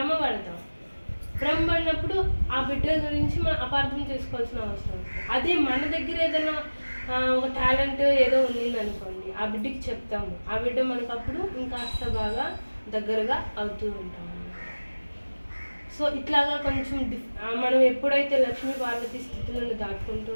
పడతాం. భ్రమ పడినప్పుడు ఆ బిడ్డ గురించి మనం అపార్థం చేసుకోవాల్సిన అవసరం ఉంటుంది. అదే మన దగ్గర ఏదైనా ఒక టాలెంట్ ఏదో ఉంది అనుకోండి, ఆ బిడ్డకి చెప్తాము, ఆ బిడ్డ మనకు అప్పుడు ఇంకాస్త బాగా దగ్గరగా అవుతూ ఉంటాము. సో ఇట్లాగా కొంచెం మనం ఎప్పుడైతే లక్ష్మీ పార్వతి స్థితులను దాటుకుంటూ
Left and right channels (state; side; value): inverted; both; correlation -1.00